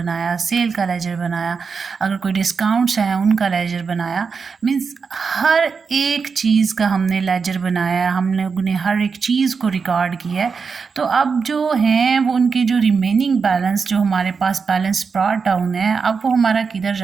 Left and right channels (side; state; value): left; quieter; 5.4 dB